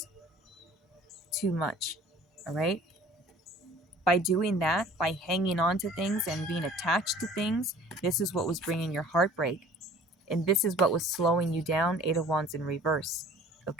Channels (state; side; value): normal; both; correlation 0.49